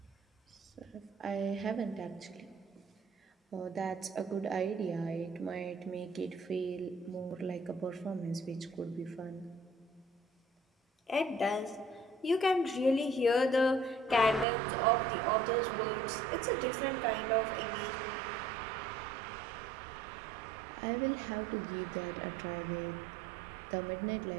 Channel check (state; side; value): drops out; left; at 14.5 s